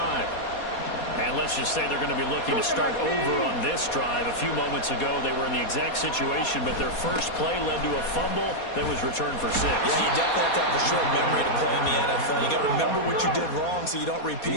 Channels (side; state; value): right; late; 4.2 ms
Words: And let's just say they're going to be looking to start over on this drive. A few moments ago, they were in the exact situation, but their first play led to a fumble that was returned for 6. Yeah, you definitely have to have a short memory to play in the NFL. You got to remember what you did wrong so you don't